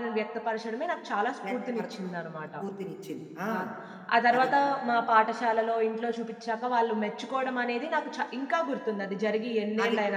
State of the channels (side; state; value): both; identical; correlation 1.00